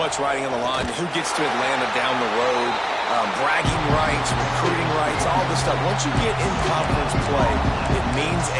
riding on the line. Who gets to Atlanta down the road? Bragging rights, recruiting rights, all this stuff. Once you get in conference play, it means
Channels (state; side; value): identical; both; correlation 1.00